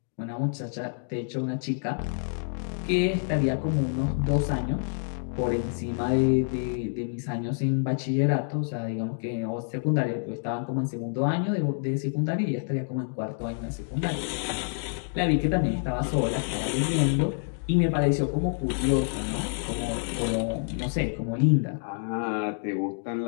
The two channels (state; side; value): silent; right; digital silence